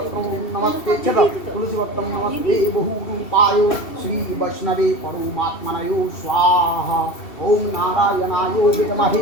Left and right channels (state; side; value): late; right; 2.7 ms